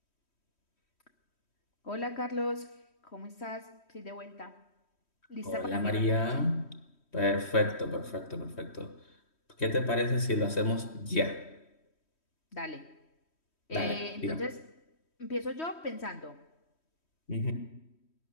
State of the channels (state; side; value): late; right; 3.1 ms